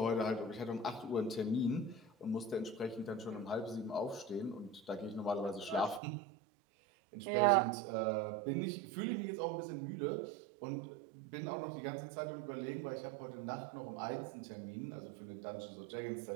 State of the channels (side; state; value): left; drops out; at 6.0 s